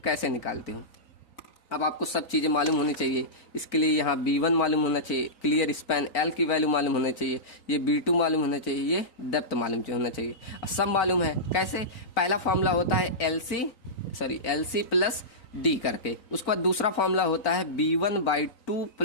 कैसे निकालते हो। अब आपको सब चीज़ें मालूम होनी चाहिए, इसके लिए यहाँ B1 मालूम होना चाहिए, क्लियर स्पैन L की वैल्यू मालूम होना चाहिए, ये B2 मालूम होना चाहिए, ये डेप्थ मालूम होना चाहिए। सब मालूम है, कैसे, पहला फॉर्मूला होता है LC प्लस D करके, उसके बाद दूसरा फॉर्मूला होता है B1/2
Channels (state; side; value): late; right; 3.9 ms